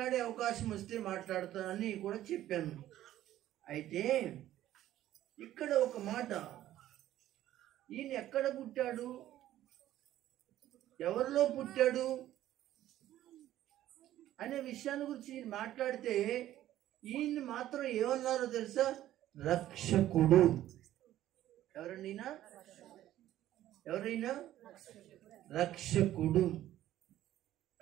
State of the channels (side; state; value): left; quieter; 13.3 dB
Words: అవకాశం వస్తే మాట్లాడతానని కూడా చెప్పాను. అయితే ఇక్కడ ఒక మాట, ఈయన ఎక్కడ పుట్టాడు, ఎవరిలో పుట్టాడు అనే విషయాన్ని గురించి మాట్లాడితే ఈయన్ని మాత్రం ఏమన్నారో తెలుసా? రక్షకుడు. ఎవరైనా రక్షకుడు.